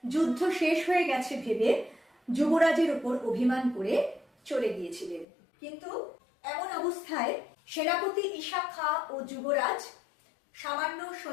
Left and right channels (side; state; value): right; drops out; at 5.2 s